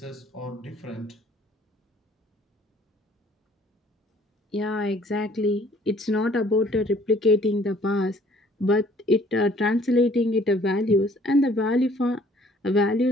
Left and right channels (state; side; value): normal; both; correlation 0.58